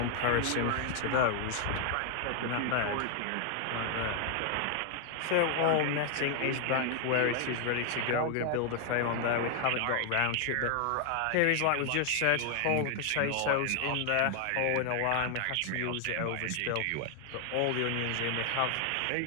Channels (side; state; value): both; different; correlation 0.00